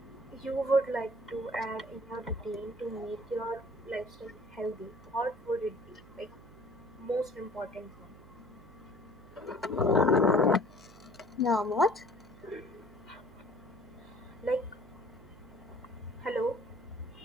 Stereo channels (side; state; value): right; noise; hum, 20 dB below the sound